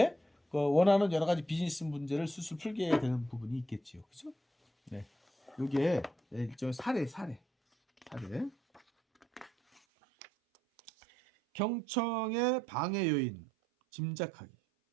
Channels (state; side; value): drops out; left; at 9.8 s